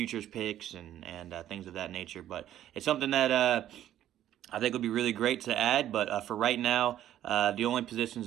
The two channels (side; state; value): left; quieter; 12.0 dB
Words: picks and things of that nature. But it's something that I think would be really great to add, but for right now, the only positions